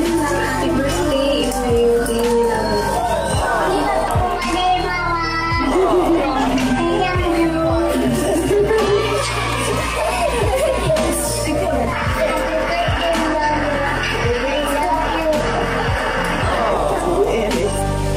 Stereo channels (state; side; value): identical; both; correlation 1.00